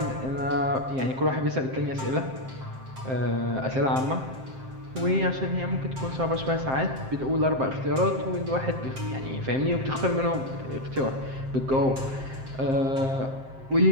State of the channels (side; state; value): left; late; 7.6 ms